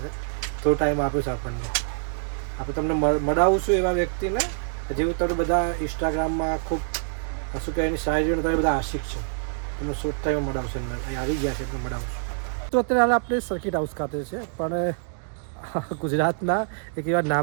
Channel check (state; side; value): silent; left; 60 dB below the other